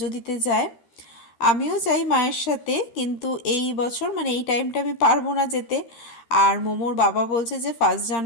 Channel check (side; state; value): right; late; 13 ms